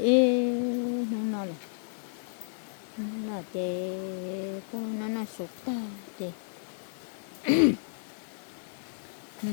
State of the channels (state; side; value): silent; right; digital silence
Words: nó non rồi nó là cái nó sụp ta thì